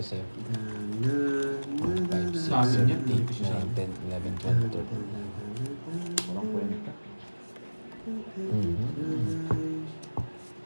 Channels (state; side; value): inverted; both; correlation -1.00